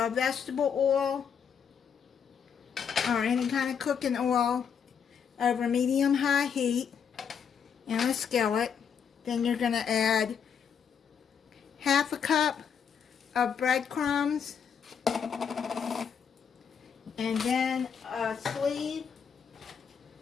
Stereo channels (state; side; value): quieter; right; 7.1 dB